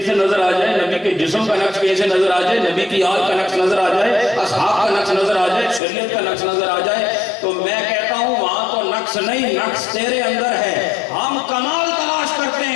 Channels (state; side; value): drops out; right; at 5.8 s